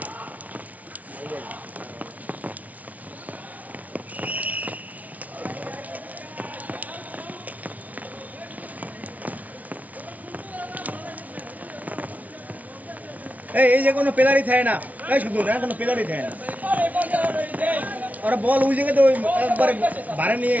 এই যে কোনো পেলারি থাকে না এই শুধু না কোনো পেলারি থাকে না ওরা বল ওই জায়গাতে ওই একবারে ভাড়া নিয়ে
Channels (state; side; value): late; left; 0.072 ms